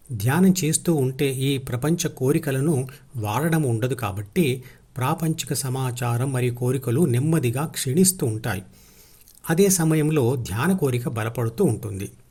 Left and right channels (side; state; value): both; identical; correlation 1.00